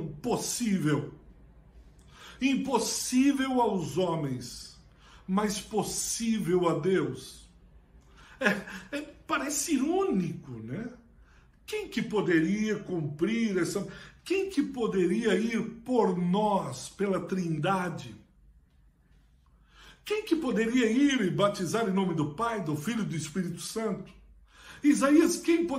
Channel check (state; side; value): identical; both; correlation 1.00